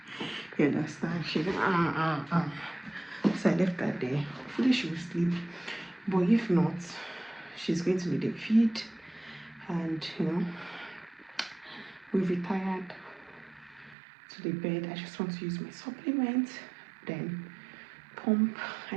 You understand? She went, So I left her there. Hopefully she will sleep. But if not, she's going to need a feed. And, we've retired to the bed. I just want to use my supplement. Then pump. I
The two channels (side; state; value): left; drops out; at 14.0 s